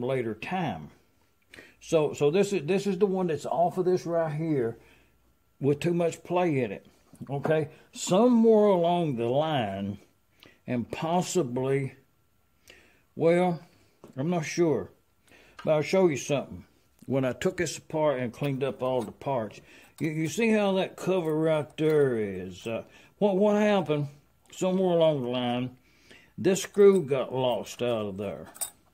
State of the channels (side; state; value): both; identical; correlation 1.00